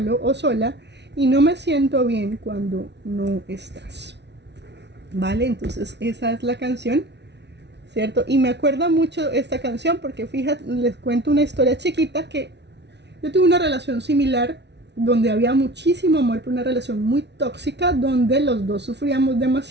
o sola y no me siento bien cuando no estás. Vale, entonces esa es la canción, ¿cierto? Y me acuerda mucho esta canción porque, fíjate, les cuento una historia chiquita, que yo tuve una relación similar donde había muchísimo amor, pero una relación muy tóxica, donde los dos sufríamos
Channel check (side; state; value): left; late; 0.50 ms